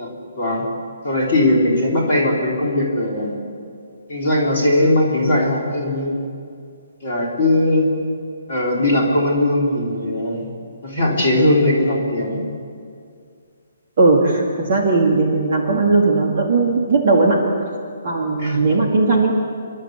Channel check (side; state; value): both; inverted; correlation -0.65